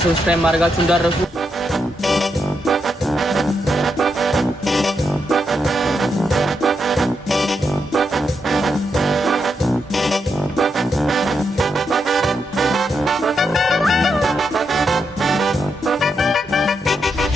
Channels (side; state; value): both; normal; correlation 0.82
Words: ሰብስክራይብ ማድረጋችሁ እንዳትረሱ